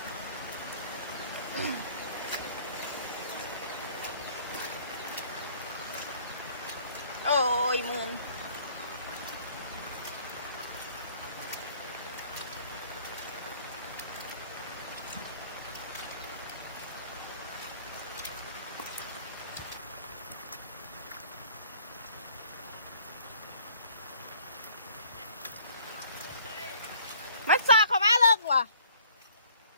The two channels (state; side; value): inverted; both; correlation -0.55